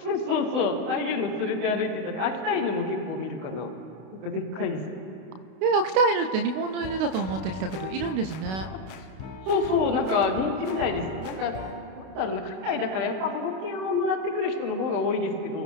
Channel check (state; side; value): late; left; 32 ms